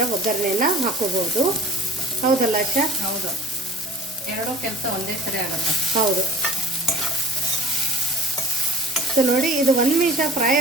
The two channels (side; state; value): both; normal; correlation 0.45